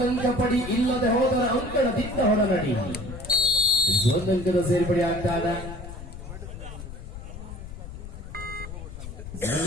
ಪಡಿ ಇಲ್ಲದೆ ಹೋದರ ಅಂಕಣದಿಂದ ಹೊರ ನಡಿ ಒಂದಂಕದ ಸೇರ್ಪಡೆ ಆಗ್ತಾ ಇದೆ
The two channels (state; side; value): noise; left; rumble, 11 dB below the sound